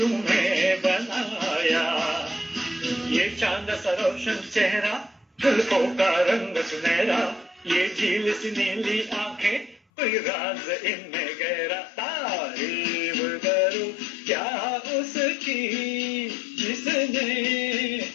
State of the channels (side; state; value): right; drops out; at 9.8 s